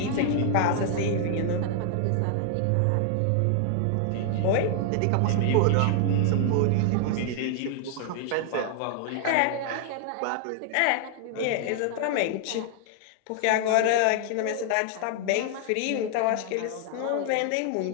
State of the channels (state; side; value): different; both; correlation 0.00